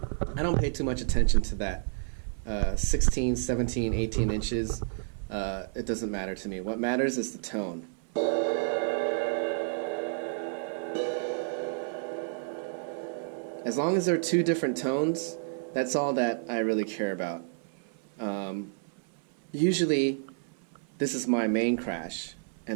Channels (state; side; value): silent; left; 56 dB below the other